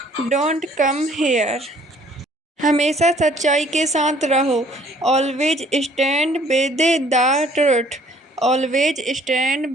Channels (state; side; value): normal; both; correlation 0.57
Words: Don't come here. हमेशा सच्चाई के साथ रहो। Always stand with the truth. Always stand